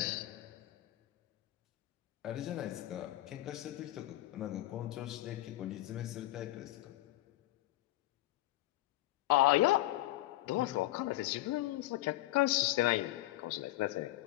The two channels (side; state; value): right; quieter; 16.9 dB